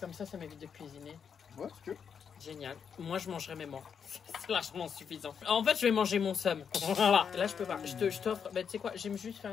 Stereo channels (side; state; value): right; quieter; 7.0 dB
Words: ça m'évite de cuisiner. Ouais, si tu veux. Génial. Moi, je mangerai mes morts. C'est largement suffisant. En fait, je vais manger mon somme. Voilà. Là, je peux pas. Je t'offre. Bah, tu sais quoi? J'ai juste fait